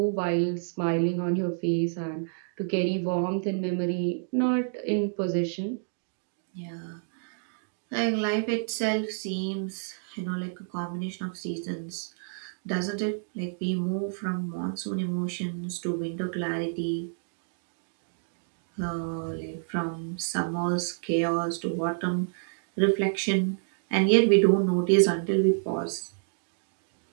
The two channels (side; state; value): left; silent; digital silence